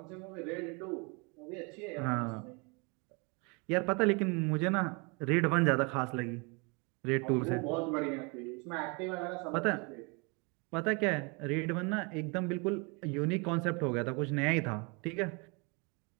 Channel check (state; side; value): quieter; left; 31.2 dB